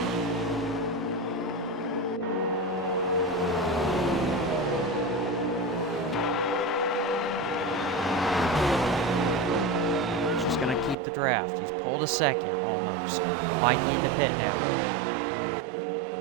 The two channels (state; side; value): drops out; left; at 11.0 s